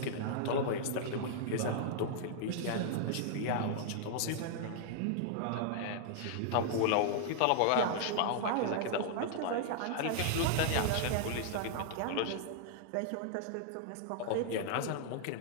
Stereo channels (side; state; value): both; different; correlation -0.01